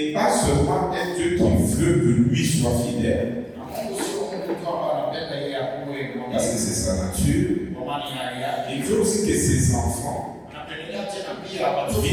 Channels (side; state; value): both; identical; correlation 1.00